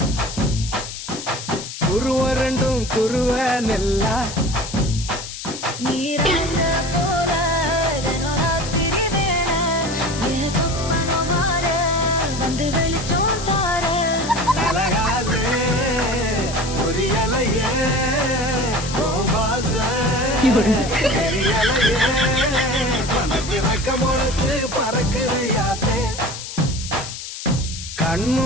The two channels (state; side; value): noise; left; hiss, 9 dB below the sound